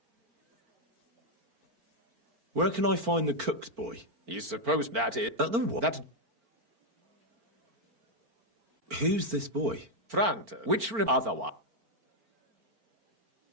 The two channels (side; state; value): left; late; 4.4 ms